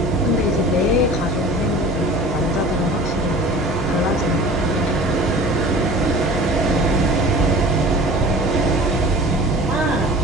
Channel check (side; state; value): both; normal; correlation 0.41